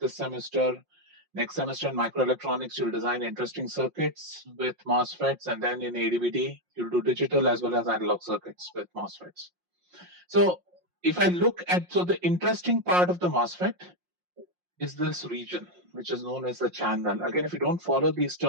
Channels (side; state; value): left; late; 5.6 ms